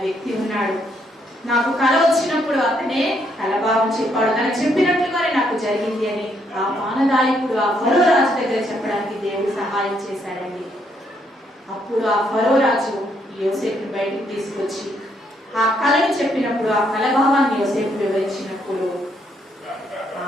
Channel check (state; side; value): normal; both; correlation 0.73